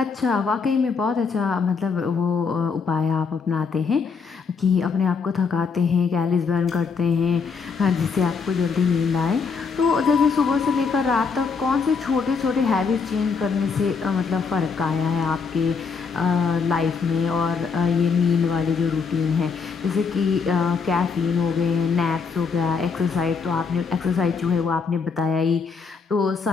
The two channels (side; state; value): right; quieter; 5.3 dB